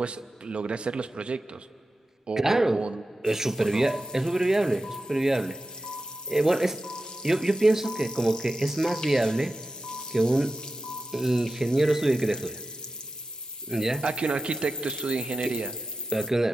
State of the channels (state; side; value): normal; both; correlation 0.92